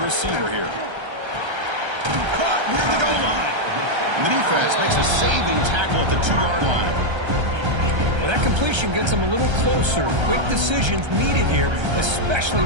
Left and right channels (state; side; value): late; left; 1.3 ms